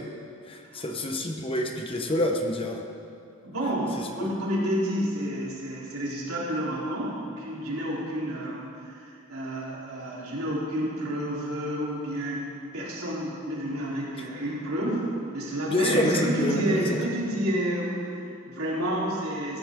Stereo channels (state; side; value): normal; both; correlation 0.49